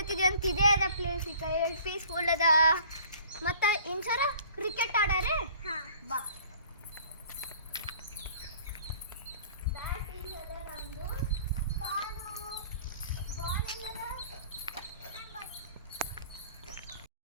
ಅಂತ. ಇದೇ ಅದ ಪ್ಲೇಸ್. ಈಗ ಪೀಸ್ಫುಲ್ ಅದ. ಮತ್ತು ಇನ್ಸರ ಕ್ರಿಕೆಟ್ ಆಡಾರೆ. ಬಾ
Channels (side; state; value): both; inverted; correlation -0.51